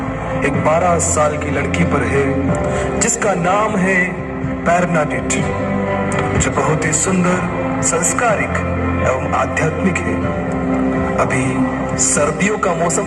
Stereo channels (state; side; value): identical; both; correlation 1.00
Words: एक 12 साल की लड़की पर है जिसका नाम है बर्नाडेट, जो बहुत ही सुंदर, संस्कारिक एवं आध्यात्मिक है। अभी सर्दियों का